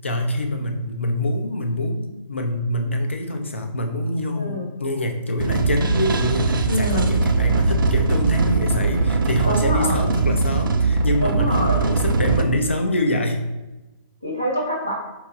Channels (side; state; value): both; inverted; correlation -0.65